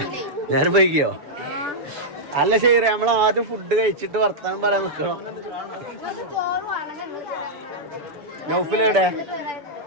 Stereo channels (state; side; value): late; left; 6.9 ms